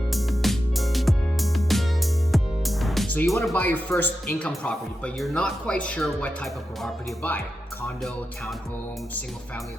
So you want to buy your first income property, but you're not quite sure what type of property to buy. Condo, townhome, single family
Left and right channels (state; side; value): normal; both; correlation 0.90